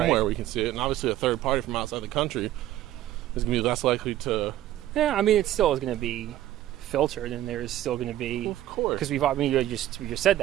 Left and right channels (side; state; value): left; quieter; 13.5 dB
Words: Right. we can see it. And obviously, a third party from outside the country is gonna be less likely to. Yeah, I mean, it still is going to be filtered, and there's still going to be Well, of course. because we just said